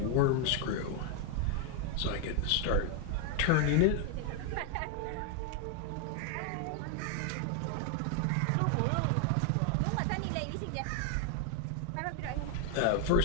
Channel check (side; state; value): both; different; correlation 0.01